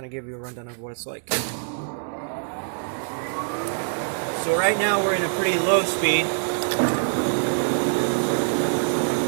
of give you a rundown of what it's like. So right now we're in a pretty low speed.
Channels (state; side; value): silent; left; digital silence